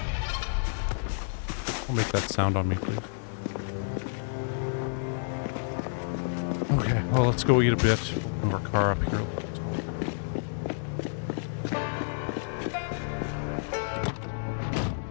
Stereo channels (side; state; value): right; silent; digital silence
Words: Don't make that sound on me, please. Okay, well, let's go eat a bit. Move our car up here.